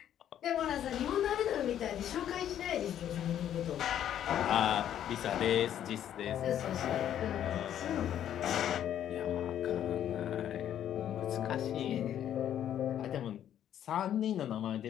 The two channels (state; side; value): quieter; right; 10.5 dB